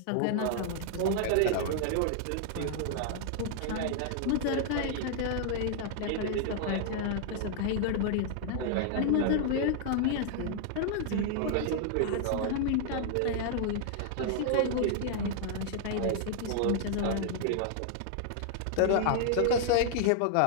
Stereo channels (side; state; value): both; different; correlation -0.01